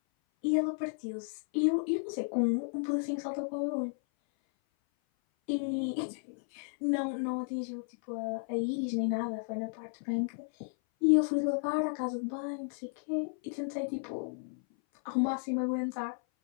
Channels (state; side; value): silent; right; 56 dB below the other